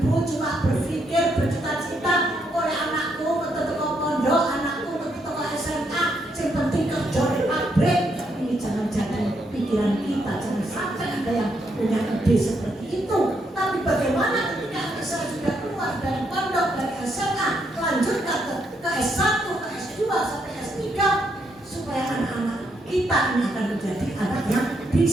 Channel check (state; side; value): normal; both; correlation 0.76